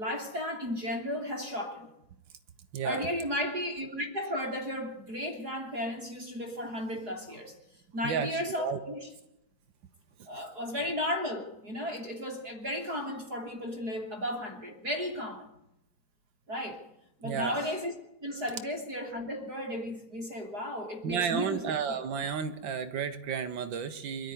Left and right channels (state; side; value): late; left; 4.7 ms